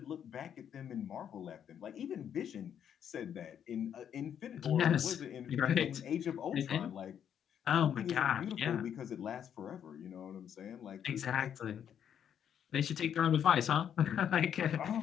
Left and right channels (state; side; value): quieter; right; 8.9 dB